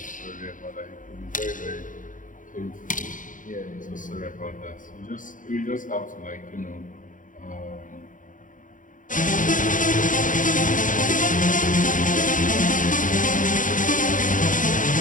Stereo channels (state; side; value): late; right; 0.38 ms